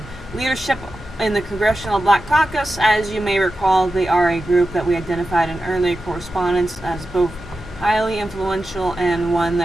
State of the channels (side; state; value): both; normal; correlation 0.92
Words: leadership in the Congressional Black Caucus. As you may recall, they are a group that we identified in early correspondence as both highly influential and one